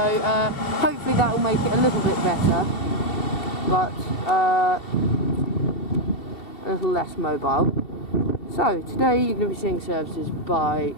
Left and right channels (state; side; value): late; right; 2.7 ms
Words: hopefully that will make it a little bit better, but a little less mobile. So today you're going to be seeing services by